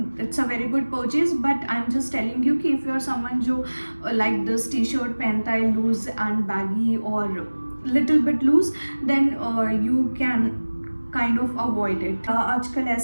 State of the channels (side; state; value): both; inverted; correlation -1.00